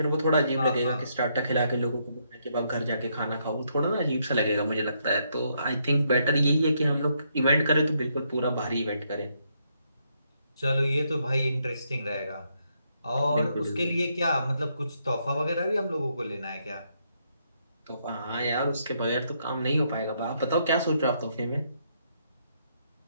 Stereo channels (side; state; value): both; inverted; correlation -0.75